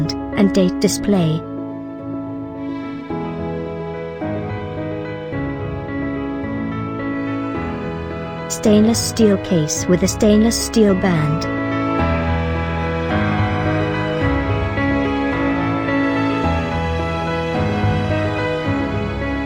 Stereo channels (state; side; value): identical; both; correlation 1.00